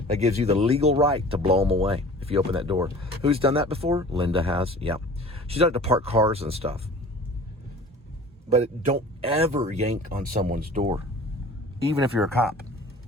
That gives you the legal right to blow them away if you open that door. Who's done that before? Linda has. Yeah. She's done it to park cars and stuff. But don't ever yank on someone's door. Even if you're a cop.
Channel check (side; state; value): both; normal; correlation 0.44